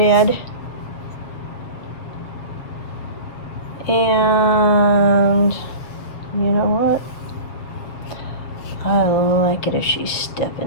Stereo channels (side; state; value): right; late; 6.8 ms